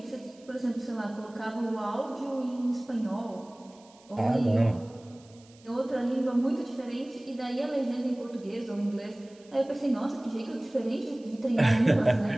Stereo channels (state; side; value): noise; right; hiss, 27 dB below the sound